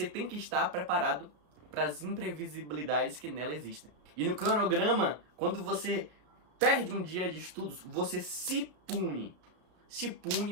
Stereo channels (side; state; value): left; late; 33 ms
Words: tem que estar preparado para as imprevisibilidades que nela existem. E no cronograma, quando você perde um dia de estudos, você se pune. Se